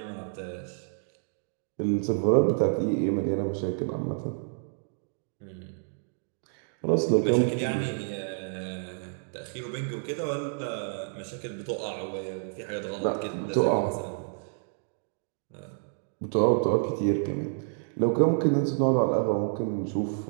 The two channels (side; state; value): left; silent; digital silence